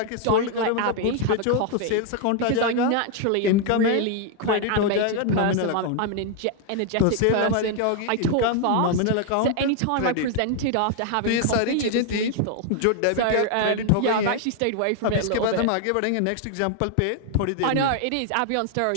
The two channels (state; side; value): different; both; correlation 0.00